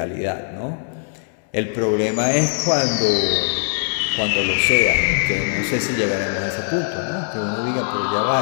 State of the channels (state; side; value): silent; right; digital silence